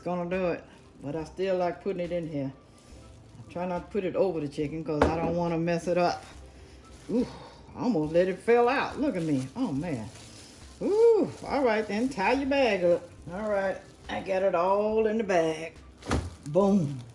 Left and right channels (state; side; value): identical; both; correlation 1.00